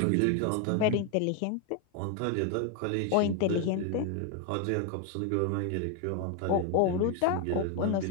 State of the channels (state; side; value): different; both; correlation 0.01